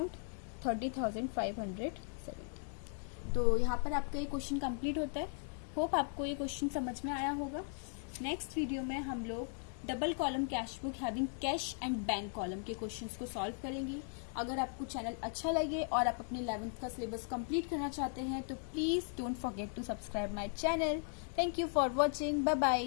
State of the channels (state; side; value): silent; right; 53 dB below the other